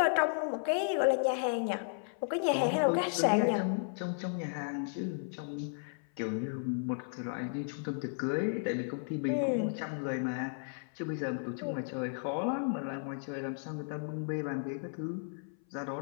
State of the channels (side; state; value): right; silent; 55 dB below the other